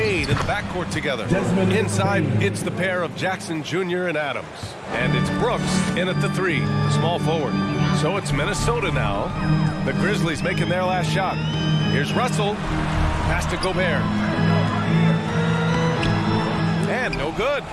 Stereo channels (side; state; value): both; identical; correlation 1.00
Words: in the backcourt together. Inside, it's the pair of Jackson Jr. and Adams. And it's Brooks in at the 3, the small forward. So it's Minnesota now. The Grizzlies making their last shot. Here's Russell. Pass to Gobert. And no good.